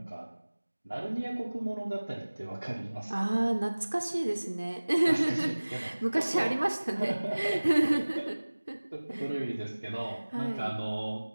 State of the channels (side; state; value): both; inverted; correlation -1.00